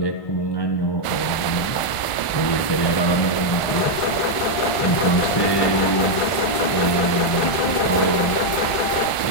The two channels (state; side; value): late; right; 1.4 ms